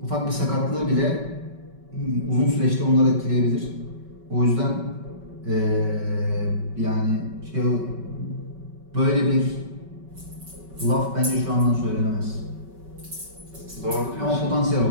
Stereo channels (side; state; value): left; late; 5.3 ms